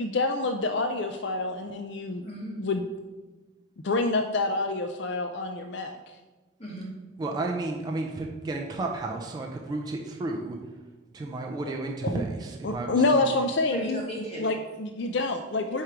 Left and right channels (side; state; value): both; normal; correlation -0.02